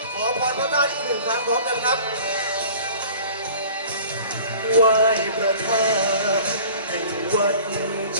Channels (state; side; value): inverted; both; correlation -0.45